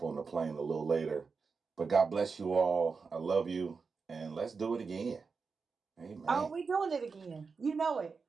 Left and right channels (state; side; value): quieter; left; 5.0 dB